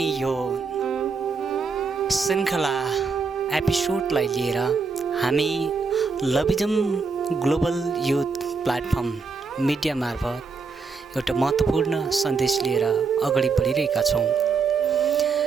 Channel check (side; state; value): left; quieter; 4.7 dB